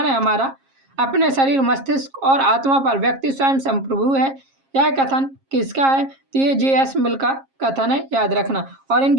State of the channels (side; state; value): left; late; 7.4 ms